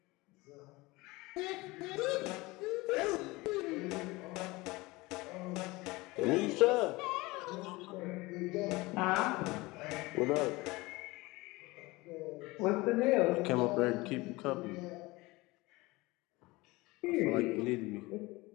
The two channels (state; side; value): quieter; right; 22.0 dB